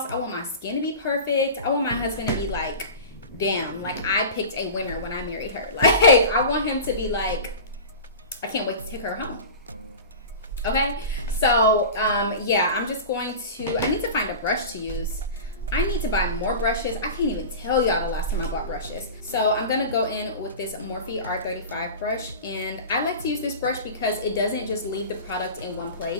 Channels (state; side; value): inverted; both; correlation -0.32